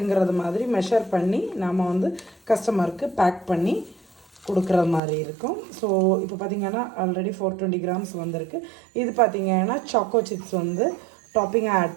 மாதிரி மெஷர் பண்ணி நம்ம வந்து கஸ்டமருக்கு பேக் பண்ணி கொடுக்குற மாதிரி இருக்கும். ஸோ இப்போ பார்த்திங்கன்னா ஆல்ரெடி 420 கிராம்ஸ் வந்திருக்கு. இது பார்த்திங்கன்னா சாக்கோ சிப்ஸ் வந்து டாப்பிங்காக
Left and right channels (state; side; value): drops out; left; at 5.0 s